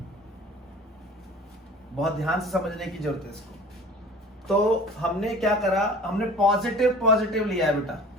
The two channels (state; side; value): normal; both; correlation 0.43